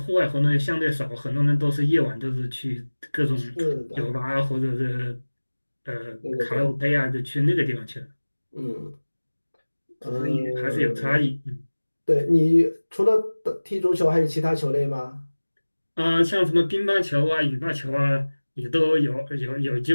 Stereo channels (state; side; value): inverted; both; correlation -1.00